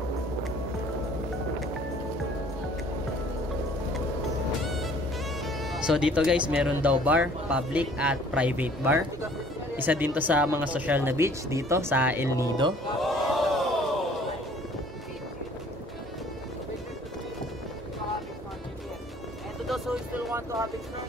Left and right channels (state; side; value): normal; both; correlation 0.54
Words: So dito guys, meron daw bar, public at private bar. Isa din to sa mga social na beach dito sa El Nido. So if you want to have